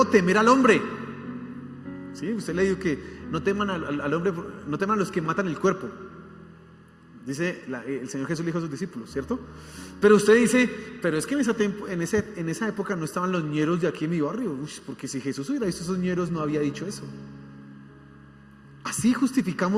temer al hombre. ¿Sí? Usted le dijo que no teman al hombre, no teman a los que matan el cuerpo. Dice el Señor Jesús le dijo a sus discípulos, ¿cierto? Pero usted dice, pero es que en esa época no estaban los ñeros de aquí en mi barrio. Porque si Jesús hubiera visto esos ñeros, no había dicho eso. Así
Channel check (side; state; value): both; identical; correlation 1.00